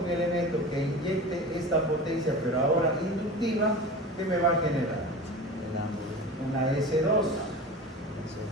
un elemento que inyecte esta potencia, pero ahora inductiva, ¿qué me va a generar? El ángulo. Una S2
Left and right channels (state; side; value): normal; both; correlation 0.33